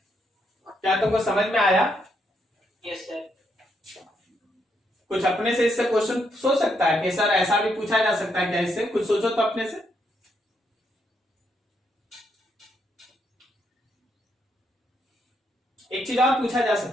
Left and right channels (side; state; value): both; normal; correlation 0.77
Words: क्या तुमको समझ में आया? Yes sir. कुछ अपने से इससे क्वेश्चन सोच सकता है कि सर ऐसा भी पूछा जा सकता है क्या? इससे कुछ सोचो तो अपने से। एक चीज और पूछा जा